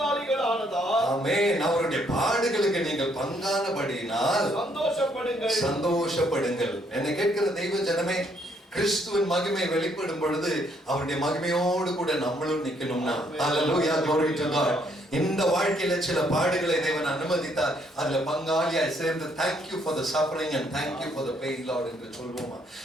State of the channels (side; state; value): both; normal; correlation 0.69